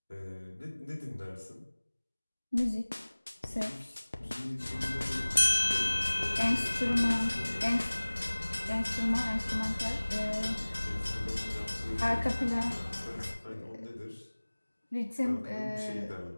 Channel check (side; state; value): both; inverted; correlation -1.00